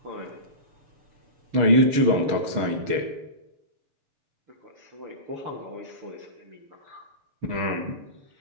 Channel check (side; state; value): left; late; 6.4 ms